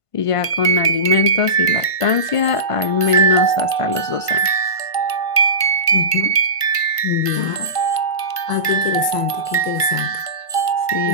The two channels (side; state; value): right; late; 1.5 ms